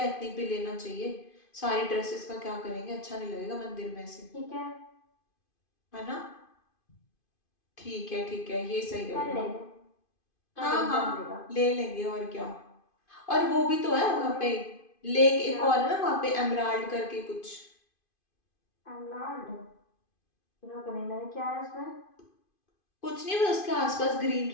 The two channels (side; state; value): right; late; 2.5 ms